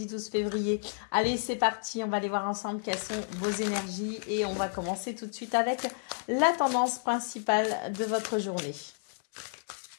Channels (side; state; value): right; silent; 57 dB below the other